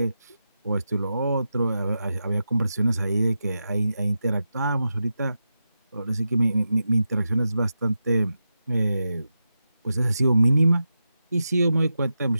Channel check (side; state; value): both; inverted; correlation -0.90